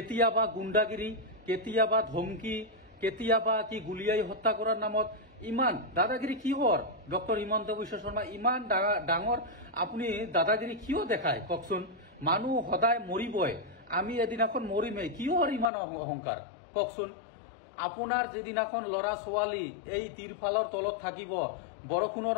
গুণ্ডাগিৰি, কেতিয়াবা ধমকি, কেতিয়াবা কি গুলিয়াই হত্যা কৰাৰ নামত ইমান দাদাগিৰি কিহৰ? ডক্টৰ হিমন্ত বিশ্ব শৰ্মা ইমান ডাঙৰ আপুনি দাদাগিৰি কিয় দেখায় কওকচোন? মানুহ সদায় মৰিবই, আমি এদিনাখন মৰিমেই, কিহৰ ইমান অহংকাৰ কওকচোন? আপোনাৰ যিদিনাখন ল'ৰা ছোৱালী এই তিৰফালৰ তলত থাকিব বৰষুণৰ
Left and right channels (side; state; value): right; drops out; at 15.7 s